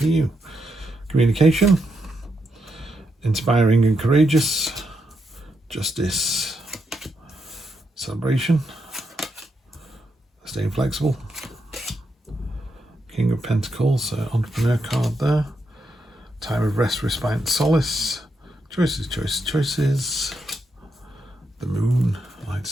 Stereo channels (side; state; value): both; normal; correlation 0.82